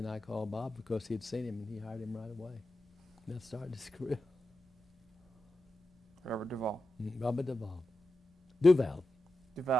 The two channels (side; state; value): both; normal; correlation 0.89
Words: I called Bob because he'd seen him, and he hired him right away. And that started his career. Robert Duvall. Robert Duvall. Duval.